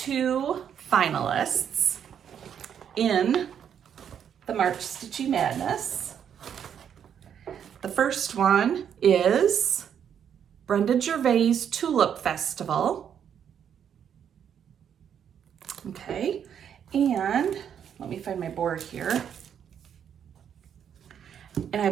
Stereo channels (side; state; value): left; quieter; 8.5 dB